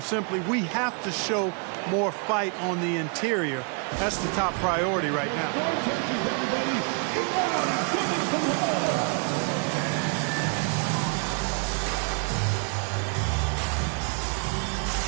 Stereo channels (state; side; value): quieter; left; 37.5 dB